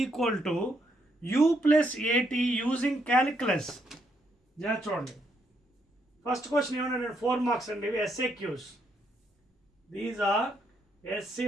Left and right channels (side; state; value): both; normal; correlation 0.75